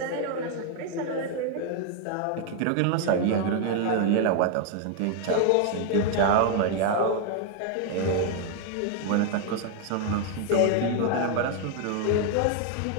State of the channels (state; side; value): different; both; correlation 0.00